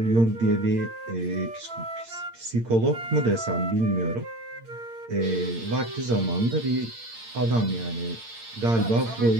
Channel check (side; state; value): left; late; 8.8 ms